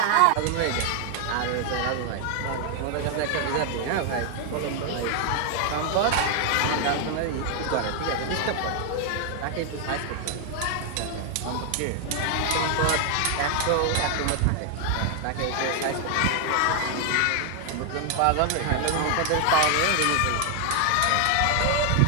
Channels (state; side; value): different; both; correlation 0.00